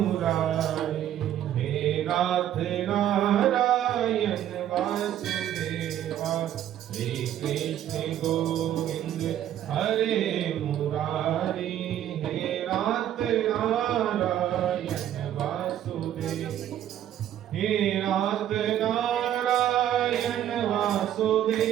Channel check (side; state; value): left; quieter; 11.3 dB